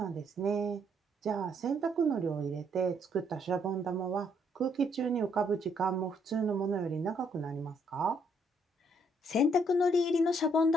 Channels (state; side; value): normal; both; correlation 0.70